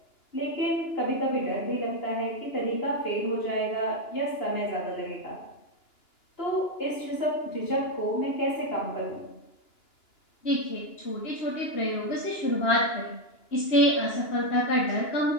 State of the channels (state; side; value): late; right; 2.9 ms